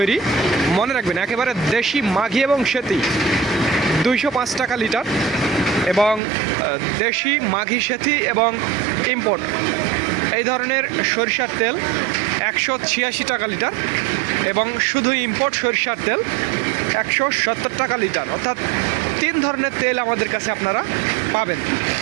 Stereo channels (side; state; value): left; drops out; at 6.2 s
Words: মনে রাখবেন একেবারে দেশি মাঘি এবং সেতি 205 টাকা লিটার, এবং দেশি মাঘি সেতি এবং ইম্পোর্ট এই ধরনের সরিষার তেল 186 টাকা লিটার, এবং শুধু ইম্পোর্ট সরিষার তেল 170 টাকা লিটার। অর্থাৎ 3 ধরনের তেল আমাদের কাছে আপনারা পাবেন।